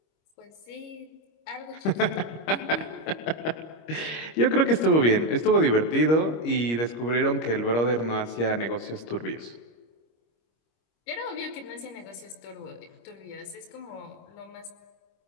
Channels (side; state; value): right; late; 25 ms